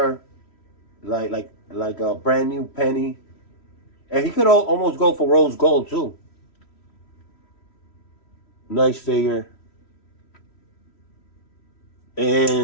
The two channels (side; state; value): right; late; 3.1 ms